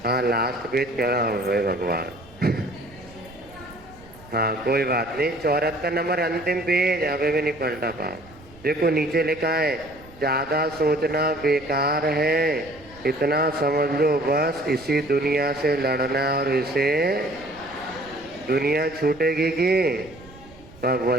हाँ, लास्ट पेज क्या है भगवान। हाँ कोई बात नहीं, 74 नंबर अंतिम पेज, अभी भी नहीं पलटा पा। देखो नीचे लिखा है, ज्यादा सोचना बेकार है, इतना समझ लो बस, इसी दुनिया से लड़ना और इसे। दुनिया छूटेगी कि तब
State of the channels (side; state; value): right; noise; rumble, 22 dB below the sound